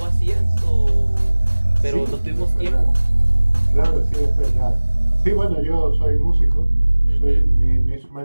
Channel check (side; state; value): both; inverted; correlation -1.00